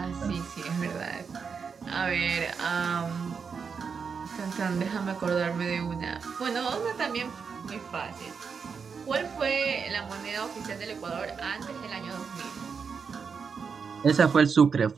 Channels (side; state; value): left; quieter; 5.9 dB